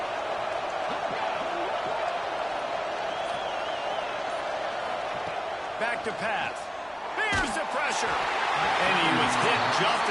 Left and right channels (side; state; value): both; identical; correlation 1.00